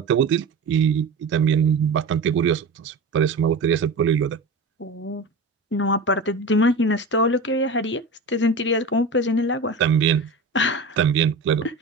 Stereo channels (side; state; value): left; quieter; 3.4 dB